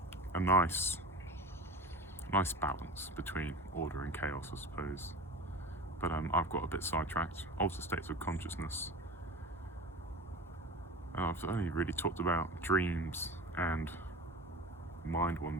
a nice balance between order and chaos, I suppose. But I've got a bit sidetracked. Altered states of consciousness. I've only really talked about dreams and mind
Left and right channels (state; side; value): normal; both; correlation 0.33